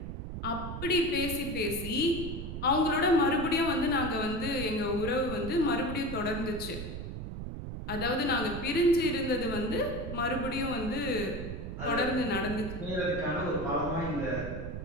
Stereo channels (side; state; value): right; noise; rumble, 7 dB below the sound